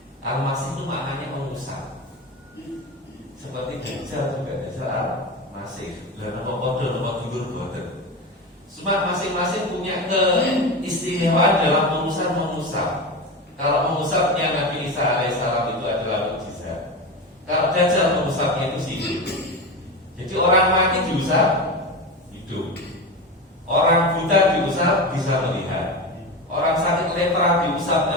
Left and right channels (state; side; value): normal; both; correlation 0.22